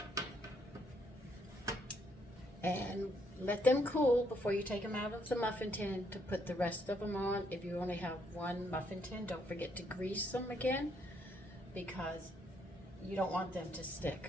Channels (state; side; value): normal; both; correlation 0.72